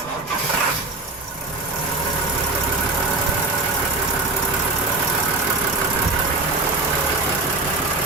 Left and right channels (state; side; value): quieter; left; 3.2 dB